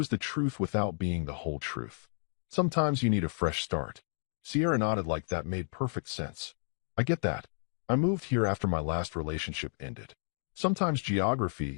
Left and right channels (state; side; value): silent; right; digital silence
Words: the truth without being the whole truth. Sometimes you need a fresh start. Sierra nodded like that made perfect sense. I get that. I moved here after my last relationship ended. Sometimes